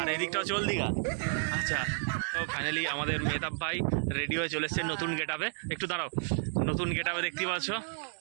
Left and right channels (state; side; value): silent; left; digital silence